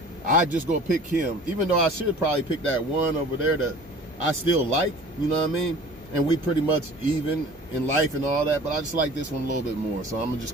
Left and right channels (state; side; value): normal; both; correlation 0.45